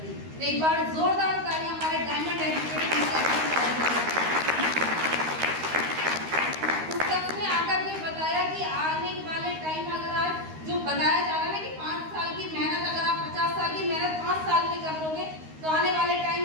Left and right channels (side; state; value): left; late; 13 ms